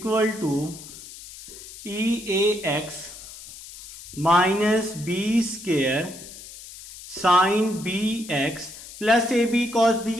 to e a x minus b square sine b x plus a b cos b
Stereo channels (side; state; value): left; noise; hiss, 15 dB below the sound